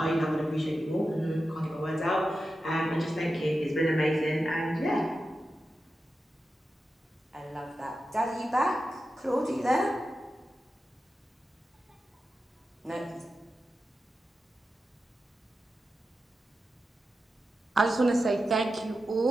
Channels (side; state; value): both; normal; correlation 0.91